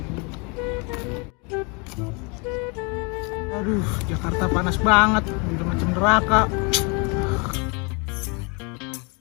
Aduh, Jakarta panas banget, udah macam neraka.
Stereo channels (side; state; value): right; quieter; 32.1 dB